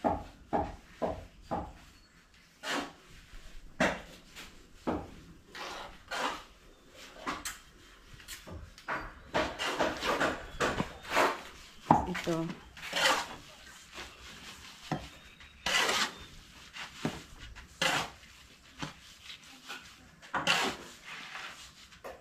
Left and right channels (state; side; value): identical; both; correlation 1.00